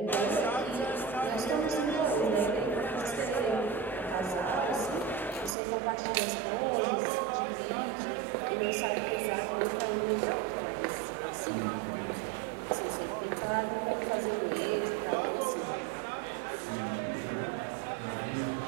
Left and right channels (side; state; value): left; drops out; at 5.6 s